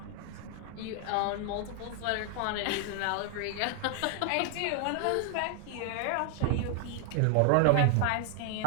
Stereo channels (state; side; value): different; both; correlation 0.00